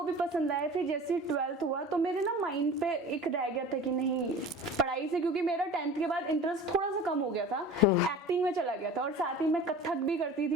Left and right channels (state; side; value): normal; both; correlation 0.38